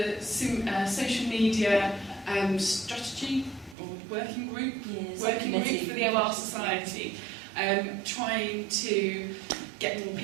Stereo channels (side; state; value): left; drops out; at 3.8 s